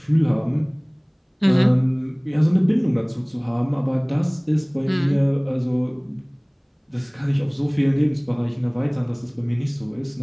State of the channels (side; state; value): both; identical; correlation 1.00